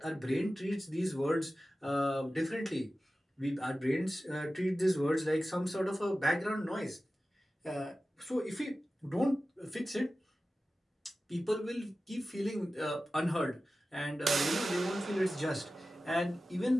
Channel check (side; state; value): both; normal; correlation 0.95